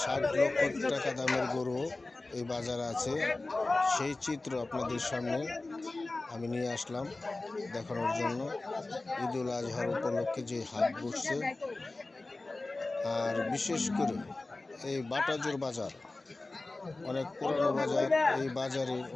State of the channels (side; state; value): right; quieter; 3.1 dB